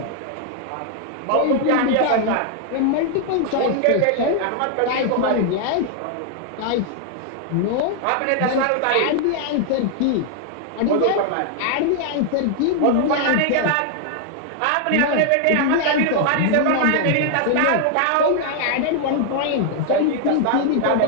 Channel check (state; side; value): different; both; correlation 0.00